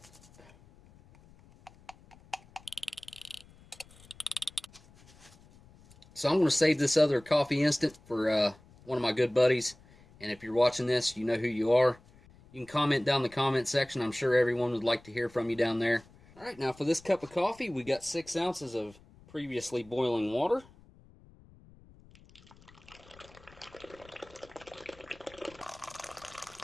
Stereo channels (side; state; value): left; noise; rumble, 25 dB below the sound